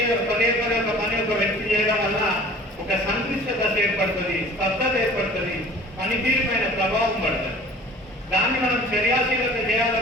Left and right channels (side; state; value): both; normal; correlation 0.47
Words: పని ఒక వ్యక్తి చేయడం వల్ల ఒక సంక్లిష్ట దశ ఏర్పడుతుంది, స్తబ్దత ఏర్పడుతుంది, పనితీరు పైన ప్రభావం పడుతుంది. దాన్ని మనం చర్యాశీలత